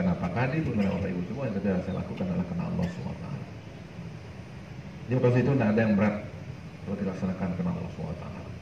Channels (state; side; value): identical; both; correlation 1.00